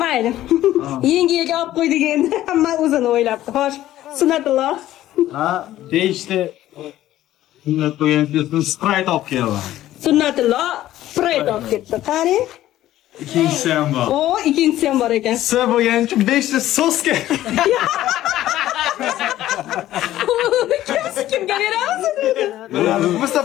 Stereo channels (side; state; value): right; quieter; 13.9 dB